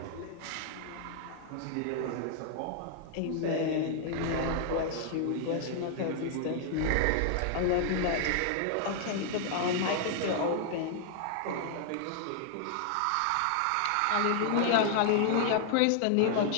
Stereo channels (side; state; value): both; different; correlation -0.01